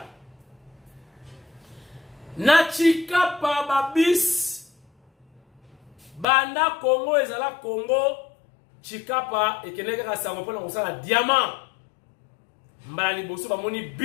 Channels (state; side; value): drops out; right; at 6.2 s